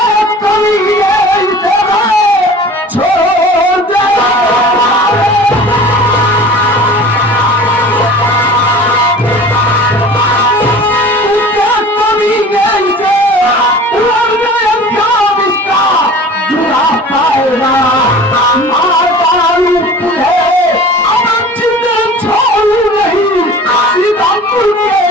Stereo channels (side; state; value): both; normal; correlation 0.42